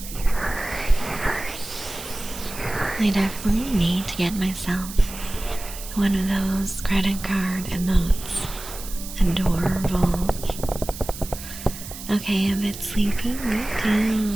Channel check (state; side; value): noise; right; hiss, 12 dB below the sound